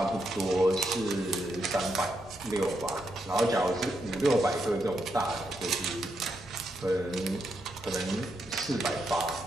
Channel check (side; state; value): both; normal; correlation 0.81